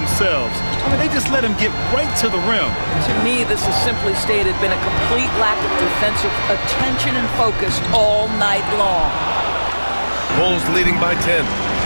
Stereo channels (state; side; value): inverted; both; correlation -1.00